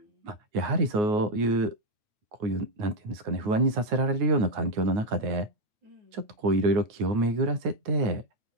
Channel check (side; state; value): left; late; 9.5 ms